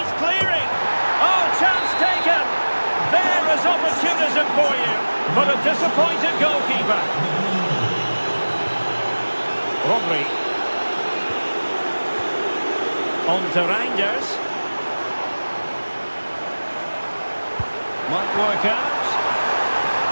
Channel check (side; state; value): both; inverted; correlation -1.00